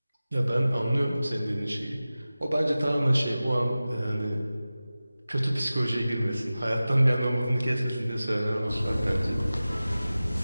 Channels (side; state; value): both; inverted; correlation -0.96